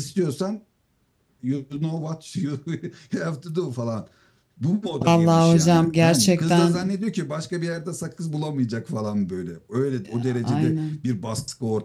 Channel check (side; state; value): both; identical; correlation 1.00